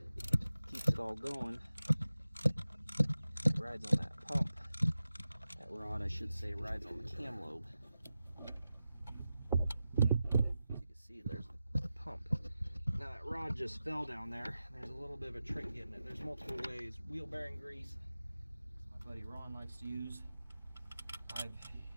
keeps it all going. It rides on that pump. That rod, I should say, rides on the cam lobe. As you can see, there's the pump. Now that rod just fell down there. There's a little bit of a trick getting it. There's multiple ways. Wheel bearing grease, my buddy Ron likes to use. My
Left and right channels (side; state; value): both; inverted; correlation -0.93